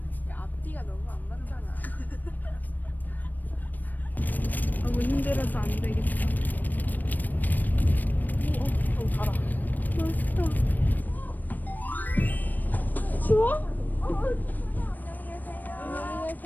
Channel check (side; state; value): right; late; 0.088 ms